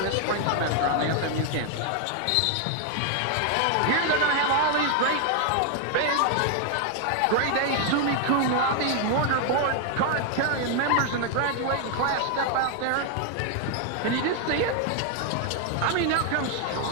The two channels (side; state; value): both; different; correlation 0.00